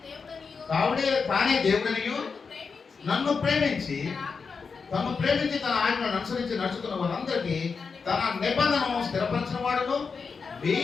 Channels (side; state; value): right; quieter; 5.2 dB